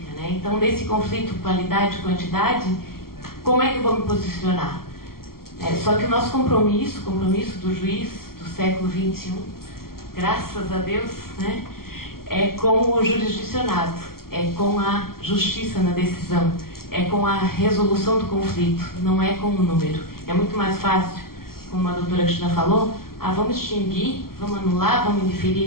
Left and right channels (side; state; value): right; late; 0.93 ms